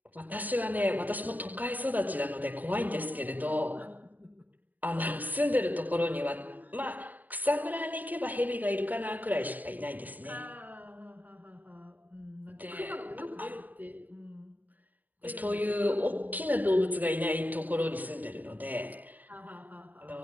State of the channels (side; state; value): left; late; 0.083 ms